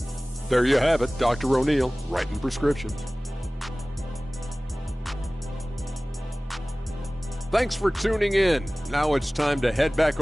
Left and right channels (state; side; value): normal; both; correlation 0.98